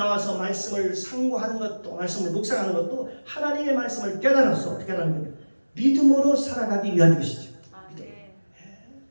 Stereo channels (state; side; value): inverted; both; correlation -1.00